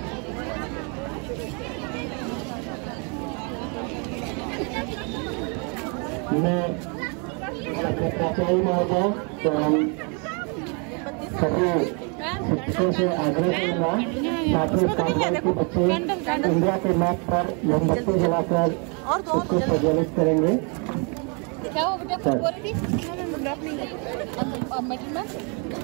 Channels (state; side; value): quieter; left; 35.5 dB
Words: मैं प्राचार्य महोदय तो हम सभी शिक्षकों से आग्रह करूंगा सातवीं कार्रवाई के बच्चे इंडिया के मैप पर मोमबत्ती जलाकर उसको प्रज्वलित करेंगे। क्या वो बेटा कुछ बोल रही थी? मेटल में